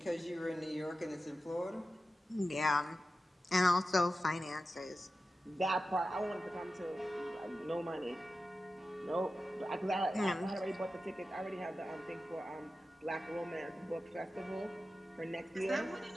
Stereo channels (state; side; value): normal; both; correlation 0.93